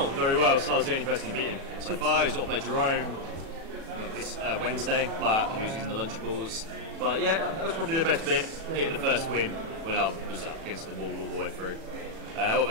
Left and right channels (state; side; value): late; left; 37 ms